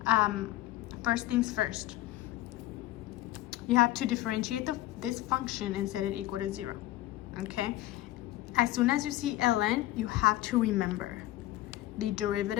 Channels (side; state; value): right; quieter; 15.9 dB